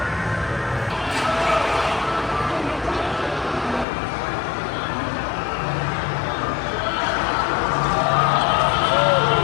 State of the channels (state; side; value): drops out; right; at 3.9 s